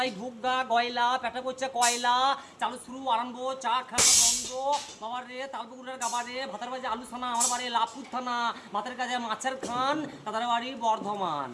ঢুকগা গয়লা, পেটে পড়ছে কয়লা, চালু শুরু আরম্ভ, চা খাওয়া বন্ধ। বাবার রে তালপুকুরের গাবা রে, ভাতার বাজে আলু থানা, আমার বাড়ি লাভপুর থানা, ভাতের কাজে মাছের খান, তাদের বাড়ি বর্ধমান।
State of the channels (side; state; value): both; identical; correlation 1.00